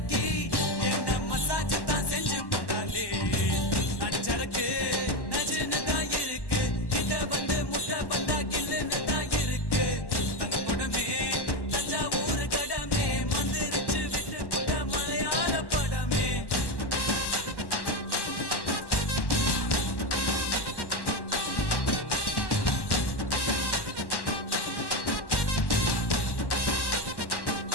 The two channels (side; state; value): right; late; 1.1 ms